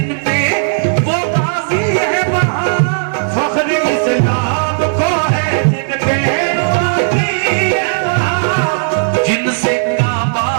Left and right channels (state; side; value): silent; left; digital silence